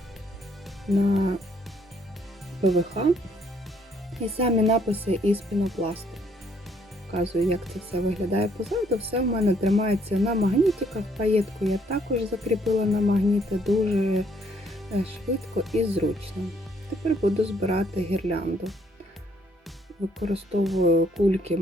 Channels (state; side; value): normal; both; correlation 0.66